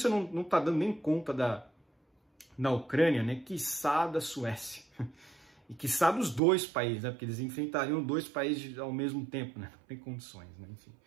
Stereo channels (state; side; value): drops out; left; at 6.4 s